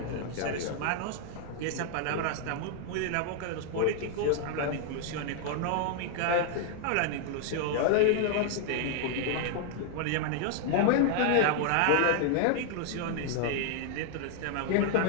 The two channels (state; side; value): different; both; correlation 0.00